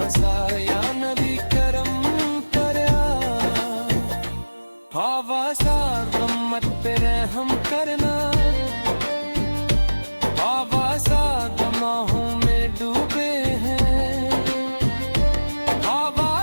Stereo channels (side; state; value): both; inverted; correlation -1.00